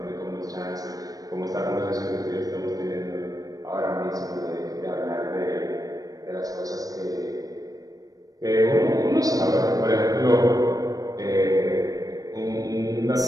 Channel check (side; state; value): left; late; 0.18 ms